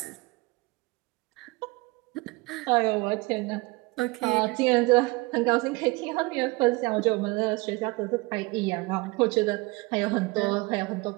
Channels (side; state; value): left; quieter; 24.2 dB